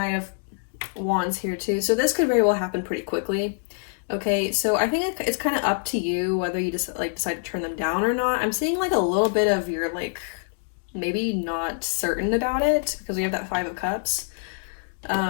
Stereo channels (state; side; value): silent; right; digital silence